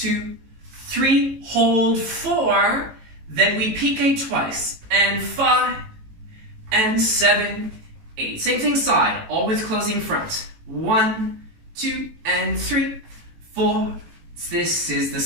3, hold 4. Then we pique twice. And 5, and 7, 8. Same thing side. Always closing front. 1, 2, and 3, 4. This is the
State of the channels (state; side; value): late; left; 18 ms